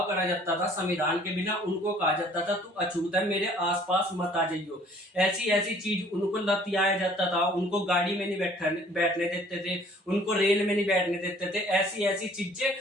करा जाता था। संविधान के बिना उनको कहा जाता था तू अछूत है, मेरे आसपास मत आ जाइयो। ऐसी ऐसी चीज उनको लतियाया जाता था, उनको गाड़ी में नहीं बैठने देते थे, उनको रेल में नहीं बैठने देते थे। ऐसी ऐसी चीजें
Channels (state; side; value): normal; both; correlation 0.55